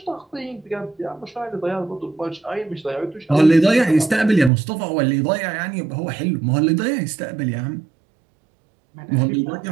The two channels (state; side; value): drops out; left; at 4.5 s